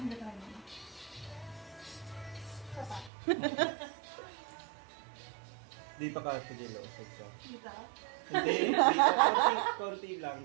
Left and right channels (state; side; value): drops out; left; at 3.1 s